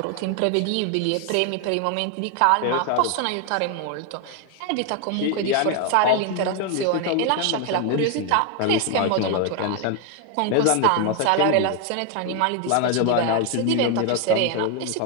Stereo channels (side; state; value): both; different; correlation 0.01